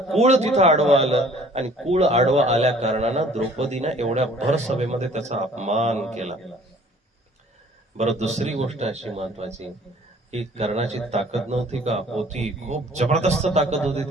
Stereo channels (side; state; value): both; normal; correlation 0.54